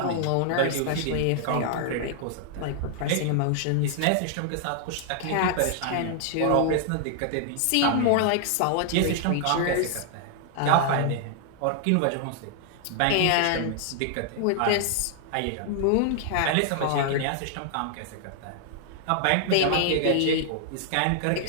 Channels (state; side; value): different; both; correlation 0.00